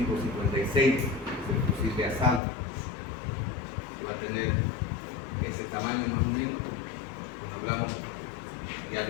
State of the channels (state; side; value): drops out; right; at 2.4 s